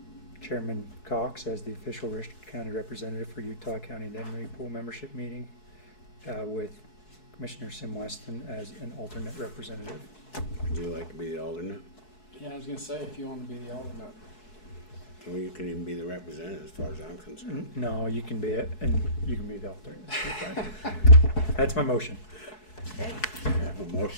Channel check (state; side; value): late; right; 4.7 ms